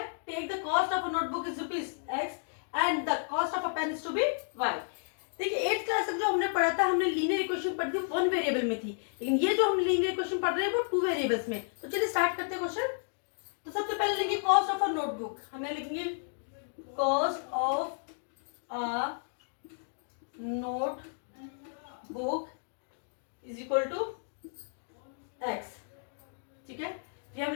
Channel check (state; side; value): silent; right; digital silence